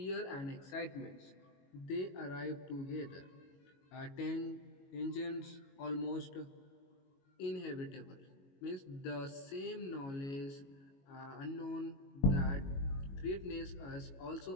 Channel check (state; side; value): late; right; 22 ms